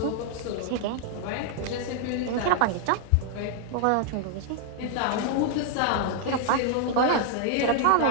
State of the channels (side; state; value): both; different; correlation 0.00